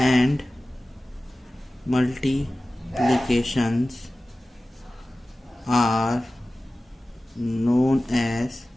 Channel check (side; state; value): both; normal; correlation 0.96